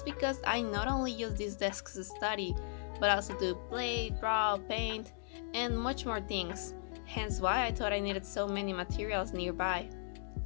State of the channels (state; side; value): silent; right; digital silence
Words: because I not only use this desk to study, but also to play, draw, paint, and much more things, hence why I thought I needed so many materials nearby.